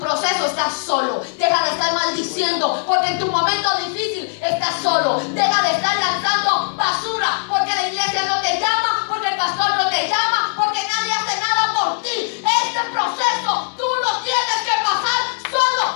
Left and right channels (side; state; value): right; silent; 66 dB below the other